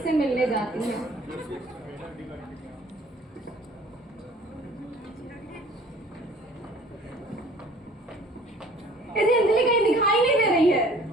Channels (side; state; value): both; normal; correlation 0.52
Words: मिलने जाती है। कैसे अंजलि कहीं दिखाई नहीं दे रही है?